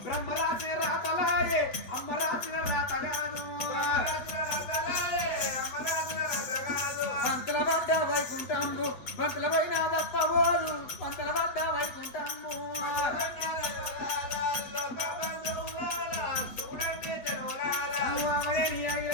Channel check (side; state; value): right; late; 7.7 ms